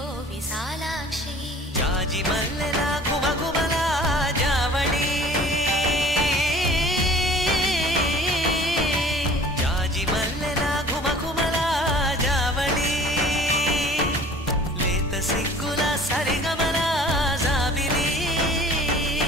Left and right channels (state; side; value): normal; both; correlation 0.47